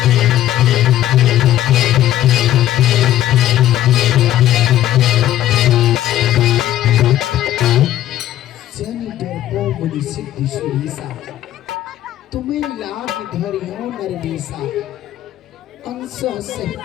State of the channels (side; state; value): right; quieter; 13.0 dB